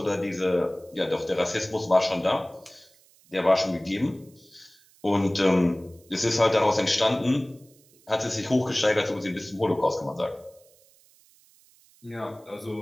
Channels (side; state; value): right; noise; hiss, 29 dB below the sound